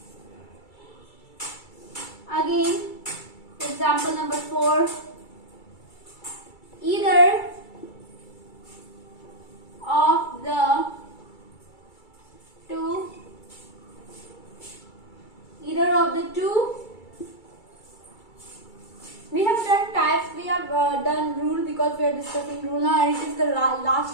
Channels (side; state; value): right; late; 2.3 ms